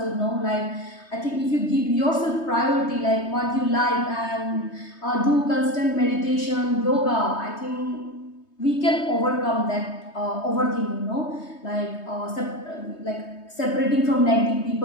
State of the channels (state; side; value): late; right; 3.2 ms